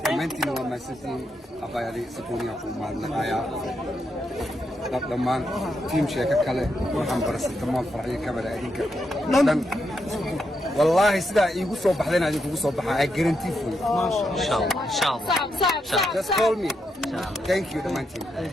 dhammaantiin waa mahadsantiin abayadi sakuuniya ku mahadnaqayaa dhammaan tiim sheeka kale waxaan barasatamaan farxiyo kabada adinka dhan والله سدا يقول صوب حدنا هذه يقول صوب حا guarantee for you إن شاء الله just call me thank you the man team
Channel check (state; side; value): normal; both; correlation 0.82